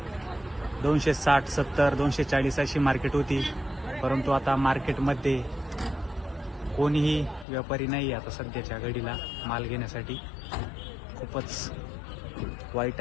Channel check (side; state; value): right; drops out; at 7.5 s